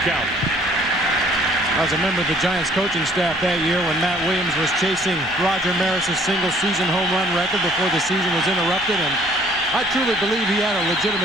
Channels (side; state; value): both; normal; correlation 0.58